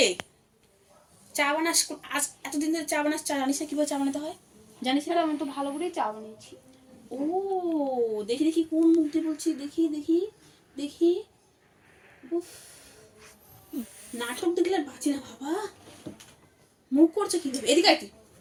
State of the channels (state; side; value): identical; both; correlation 1.00